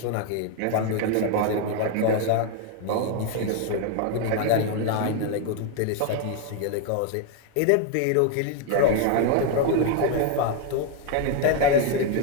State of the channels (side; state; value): both; different; correlation 0.01